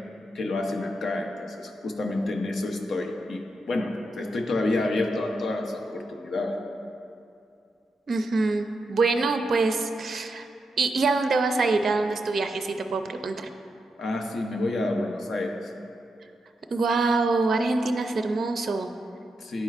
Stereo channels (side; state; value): both; normal; correlation 0.85